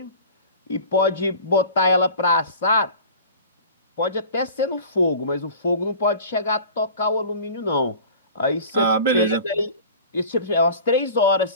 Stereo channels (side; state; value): both; inverted; correlation -0.41